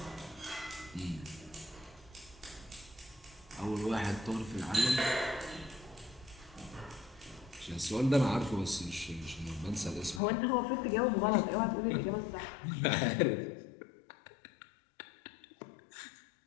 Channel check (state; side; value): drops out; right; at 10.2 s